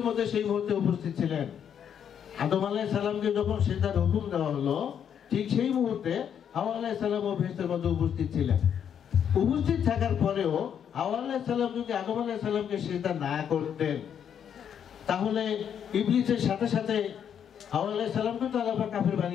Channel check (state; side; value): quieter; right; 8.5 dB